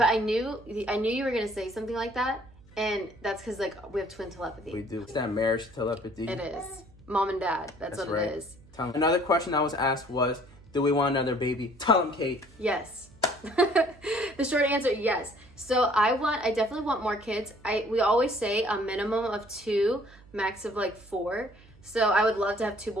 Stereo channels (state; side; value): noise; right; hum, 25 dB below the sound